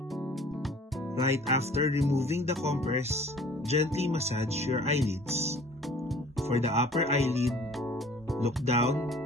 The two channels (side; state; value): both; normal; correlation 0.50